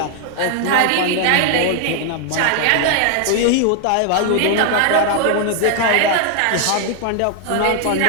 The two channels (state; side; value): different; both; correlation 0.00